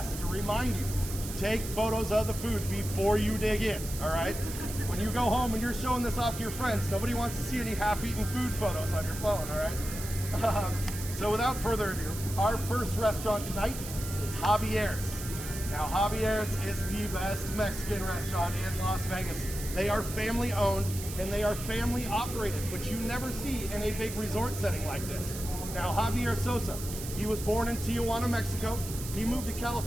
to remind you, take photos of the food before you dig in, all right? When you go home and you're showing this off to your friends, nobody wants to see any half-eaten food photos on your phone, all right? So without further ado, our first restaurant tonight is Javier's. Now, Javier's is the best Mexican restaurant in Las Vegas. They are family owned and they are family operated, which you never see in a big resort setting like this. Now, Javier Sosa, he was born in Tijuana, Mexico. He moved to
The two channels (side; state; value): right; noise; hiss, 10 dB below the sound